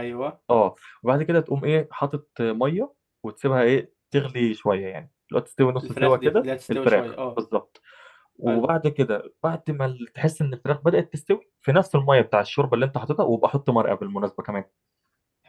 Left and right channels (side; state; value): both; identical; correlation 1.00